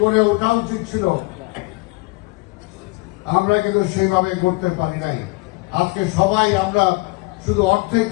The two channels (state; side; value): quieter; right; 25.4 dB